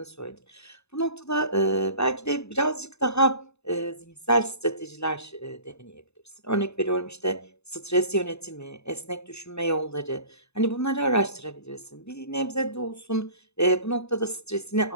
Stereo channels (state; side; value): late; right; 0.80 ms